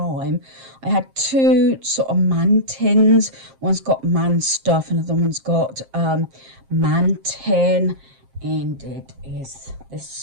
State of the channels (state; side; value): late; left; 7.5 ms